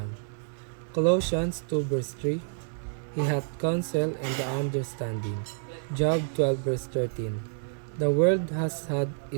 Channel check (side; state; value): left; silent; digital silence